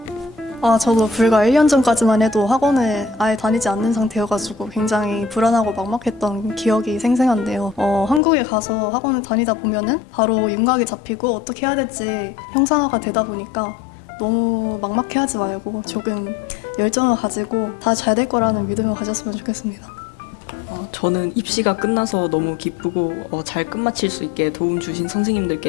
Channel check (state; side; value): drops out; right; at 8.2 s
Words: 저도 불과 1년 전까지만 해도 학원을 아예 다니지 않는 상태여가지고 굉장히 불안하고 막막했던 기억이 생생한데요. 한국에 가서 학원을 다니다 보면은 바로 윤곽이 잡히고 어떻게 해야 될지 형상화가 되다 보니까 너무 막막해하지 말고 조금 열정을 가지고 다 잘 될 거라는 믿음을 가졌으면 좋겠습니다. 저는 입시가 끝나서 너무 기쁘고 잘 끝마칠 수 있게 도움 주신